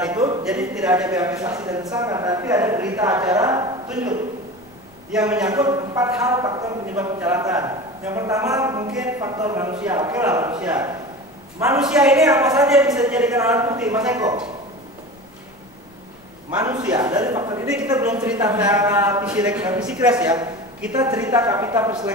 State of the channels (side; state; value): left; noise; rumble, 29 dB below the sound